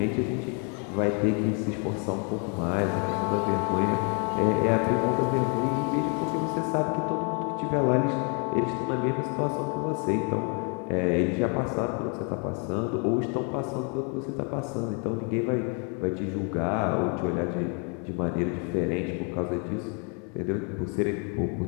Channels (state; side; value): quieter; right; 37.8 dB